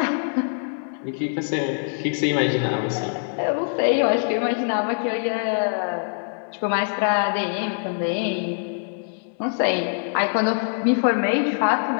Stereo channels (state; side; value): silent; right; digital silence